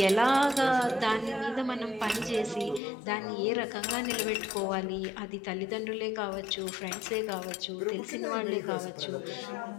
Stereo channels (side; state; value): right; drops out; at 2.8 s